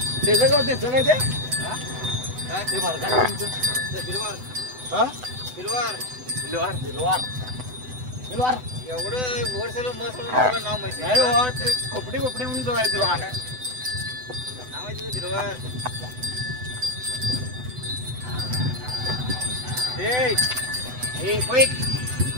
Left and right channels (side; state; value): left; late; 8.0 ms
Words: त्याचं काय त्याचं काय ते बार का बिलवार हा बिलवार बिलवार बिलवार बिलवार एवढं वर्षाला मस्त नाव माहिती नाही हो ते खोपडी खोपडी म्हणून जवळ बिलवार नाव आहे तुझं बिलवार ए ए क्विक